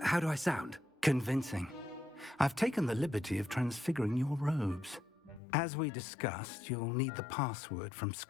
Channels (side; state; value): right; drops out; at 5.4 s